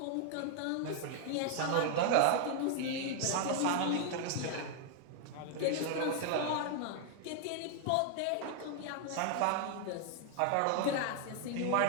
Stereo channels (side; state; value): both; different; correlation 0.00